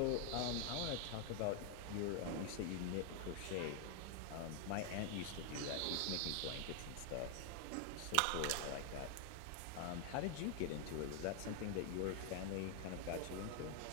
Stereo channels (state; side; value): different; both; correlation 0.00